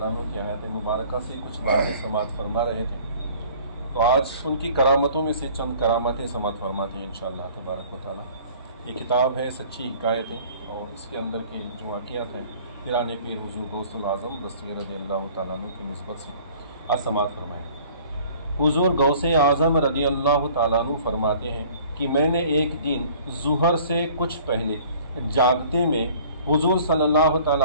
عنہ کی آیات مبارکہ سے کچھ باتیں سماعت فرما رہے تھے، تو آج ان کی کرامتوں میں سے چند کرامتیں سماعت فرماتے ہیں انشاءاللہ تبارک و تعالیٰ۔ یہ کتاب ہے سچی حکایتیں، اور اس کے اندر کی جو واقعات ہیں پیران پیر حضور غوث العظم رضی اللہ تعالیٰ عنہ کی نسبت سے آج سماعت فرمائیں۔ حضور غوث اعظم رضی اللہ تعالیٰ عنہ فرماتے ہیں کہ میں نے ایک دن ظہر سے کچھ پہلے جاگتے میں حضور صلی اللہ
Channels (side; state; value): both; inverted; correlation -0.51